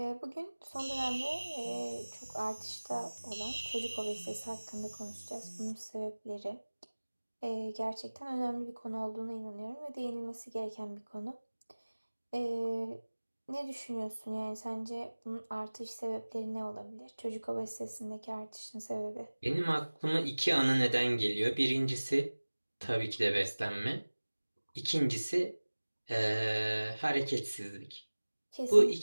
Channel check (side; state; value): both; inverted; correlation -1.00